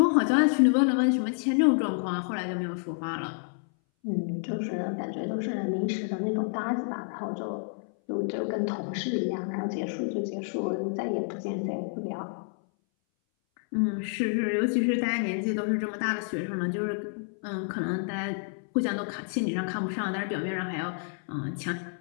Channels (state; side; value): silent; right; 59 dB below the other